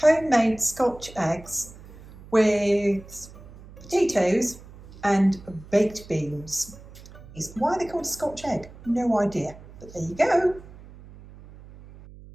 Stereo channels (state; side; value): noise; right; hum, 19 dB below the sound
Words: scotch eggs with potatoes and baked beans. Why are they called a scotch egg? No idea, but there you go.